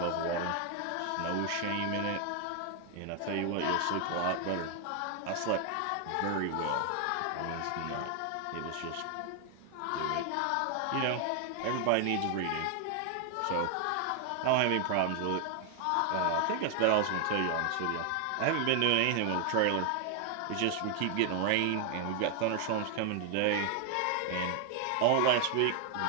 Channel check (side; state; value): both; different; correlation 0.00